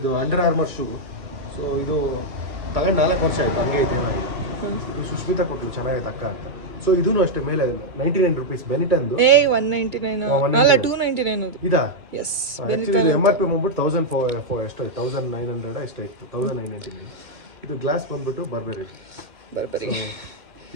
ಅಂಡರ್ ಆರ್ಮರ್ ಶೂ. ಸೊ ಇದು ತಗೊಂಡು 4 ವರ್ಷ ಆಯ್ತು, ಹಂಗೆ ಐತೆ, ಏನಾಗಿದೆ. ಇದು ಸುಷ್ಮಿತಾ ಕೊಟ್ಟರು, ಚೆನ್ನಾಗೈತೆ ಅಕ್ಕ ಅಂತ. ಸೊ ಇದೂ ಅಷ್ಟೇ, ಮೇಲೆ 99 ರೂಪೀಸ್ ಬೆನಿಟನ್ದು. 199 ಅಲ್ಲ 299 ಅದು. ಇದಾ? ಎಸ್. ಆಕ್ಚುಲಿ MRP ಬಂದ್ಬಿಟ್ಟು 1004 ಎಷ್ಟು 1900 ಎಷ್ಟಾಯ್ತು, 1999. ಇದು ಗ್ಲಾಸ್ ಬಂದ್ಬಿಟ್ಟು ಬರ್ಬರಿ.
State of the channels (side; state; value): left; late; 2.2 ms